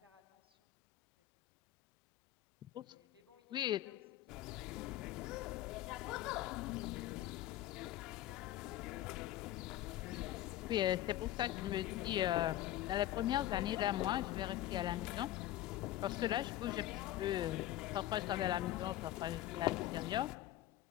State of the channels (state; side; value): quieter; right; 13.8 dB